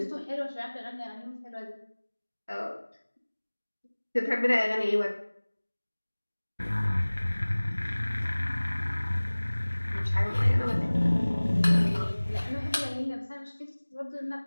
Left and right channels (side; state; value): both; inverted; correlation -1.00